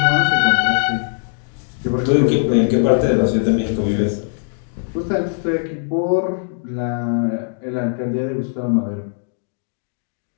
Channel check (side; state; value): right; silent; digital silence